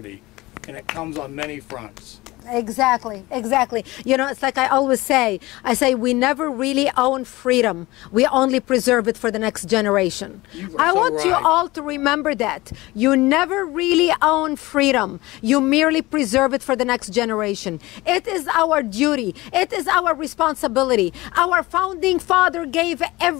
And it comes on many fronts. Exactly, exactly. You know, it's like I always say, I say we never really own freedom. We only preserve it for the next generation. I want you all to remember that. You never really own freedom. You merely preserve it for the next generation. It is our duty. It is our responsibility. Our founding father gave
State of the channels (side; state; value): right; quieter; 20.3 dB